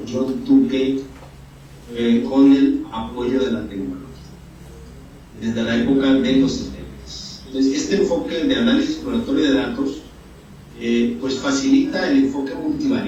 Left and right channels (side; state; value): both; identical; correlation 1.00